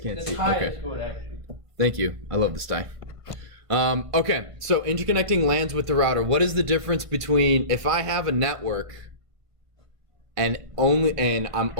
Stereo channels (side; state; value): left; late; 1.5 ms